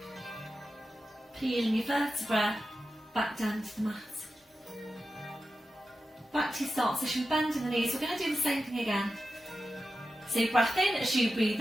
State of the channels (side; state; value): both; normal; correlation 0.92